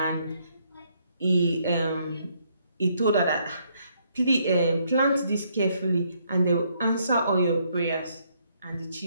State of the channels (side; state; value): both; inverted; correlation -0.71